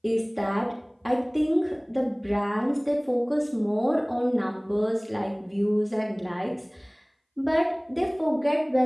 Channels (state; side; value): identical; both; correlation 1.00